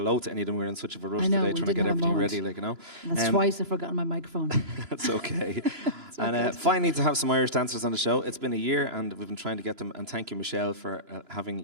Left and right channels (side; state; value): left; late; 3.0 ms